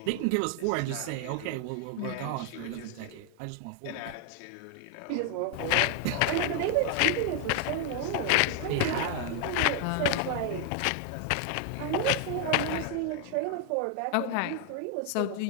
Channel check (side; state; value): both; different; correlation 0.00